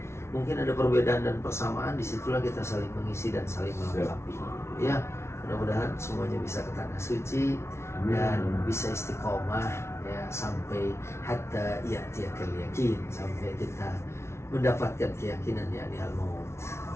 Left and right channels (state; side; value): late; right; 0.13 ms